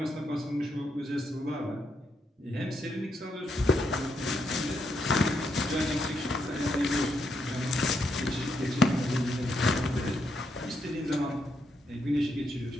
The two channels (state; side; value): normal; both; correlation 0.79